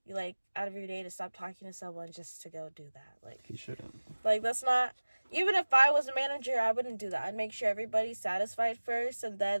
your day to stop talking to someone just to go do that. Like, he shouldn't. Like, that's not, even if I was a manager, I wouldn't do that. I'd make sure everybody's satisfied first, and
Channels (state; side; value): inverted; both; correlation -1.00